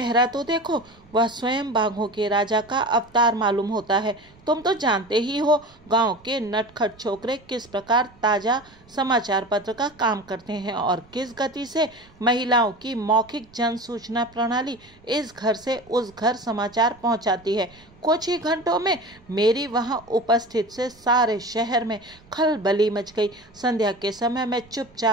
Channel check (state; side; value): noise; right; rumble, 27 dB below the sound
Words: तो देखो, वह स्वयं बाघों के राजा का अवतार मालूम होता है। तुम तो जानते ही हो गांव के नटखट छोकरे किस प्रकार ताजा समाचार पत्र का काम करते हैं और किस गति से महिलाओं की मौखिक जन सूचना प्रणाली इस घर से उस घर समाचार पहुंचाती है। कुछ ही घंटों में मेरी वहां उपस्थित से सारे शहर में खलबली मच गई। संध्या के समय मैं